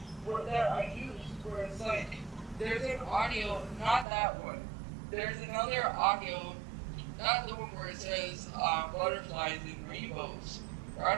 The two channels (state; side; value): drops out; left; at 4.0 s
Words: that I use where it's like, there's an audio, not that one. There's another audio, not the one where it says butterflies and rainbows. Or